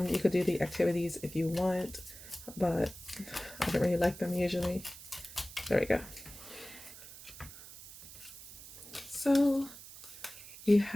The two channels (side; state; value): right; noise; hiss, 15 dB below the sound